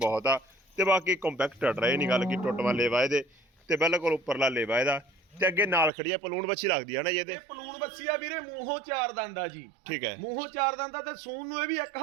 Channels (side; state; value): left; drops out; at 5.9 s